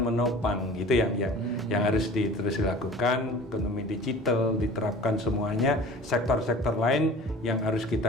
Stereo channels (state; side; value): normal; both; correlation 0.42